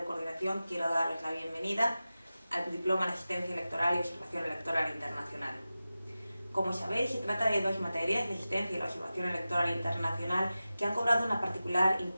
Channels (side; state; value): both; inverted; correlation -0.95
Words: coordinación quiero daros la bienvenida al Diploma en Asistencia Electoral y Observación Electoral Internacional. Como sabéis, se trata de dos materias, la asistencia y la observación electoral internacional, que han cobrado una particular